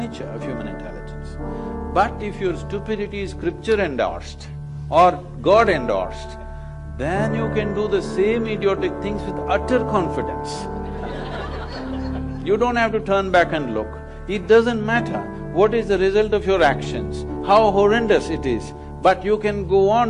of human intelligence. But if your stupidity is scripture endorsed or God endorsed, then you can do the same idiotic things with utter confidence. You don't have to turn back and look. It doesn't matter what is the result of your actions, how horrendous it is, but you can go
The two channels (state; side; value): identical; both; correlation 1.00